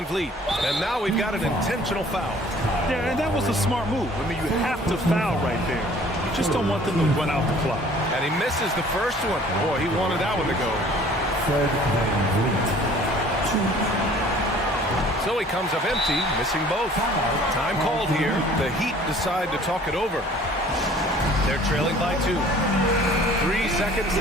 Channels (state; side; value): normal; both; correlation 0.52